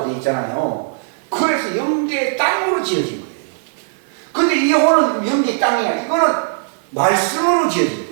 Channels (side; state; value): left; silent; 67 dB below the other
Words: 되어 있잖아요. 그래서 영계의 땅으로 지어진 거예요. 근데 이 혼은 영계의 땅이 아니라 이거는 말씀으로 지어진